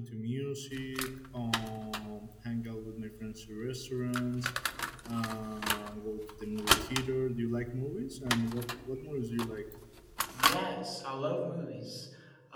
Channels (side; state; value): both; identical; correlation 1.00